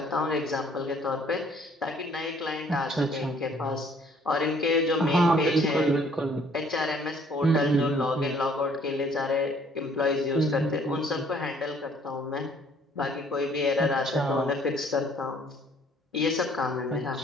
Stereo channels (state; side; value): normal; both; correlation 0.60